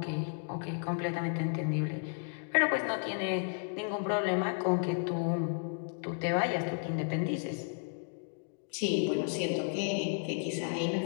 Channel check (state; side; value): silent; right; 55 dB below the other